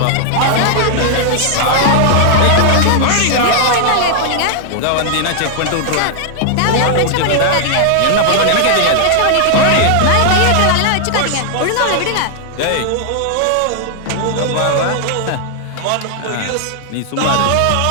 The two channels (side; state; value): both; different; correlation -0.01